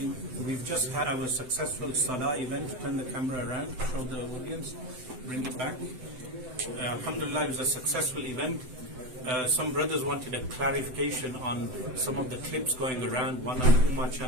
We've just had our successful Salah event. Turn the camera around, show the audience, bring it back. Alhamdulillah, it was a successful event. Some brothers wanted a clarification on some of the clips going around, one on the Ummah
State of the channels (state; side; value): late; left; 7.8 ms